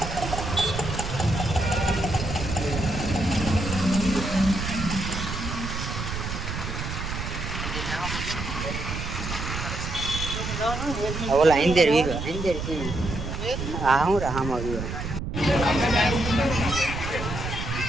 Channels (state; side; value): noise; right; rumble, 5 dB below the sound